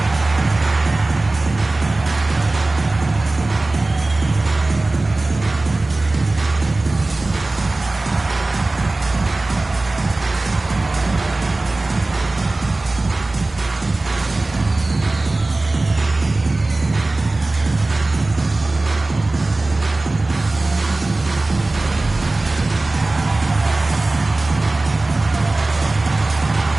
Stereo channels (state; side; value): quieter; left; 3.0 dB